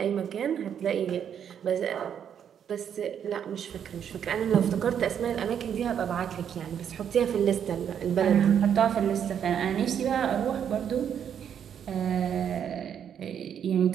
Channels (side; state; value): left; quieter; 8.6 dB